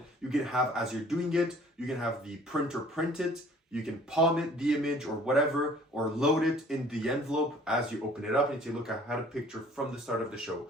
you can have, as you're doing it, you can have the printer print it, you can palm it, the image or whatever, or load it in the envelope as you open it up. And you say, look, I had a picture from the start of the show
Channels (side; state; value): both; normal; correlation 0.53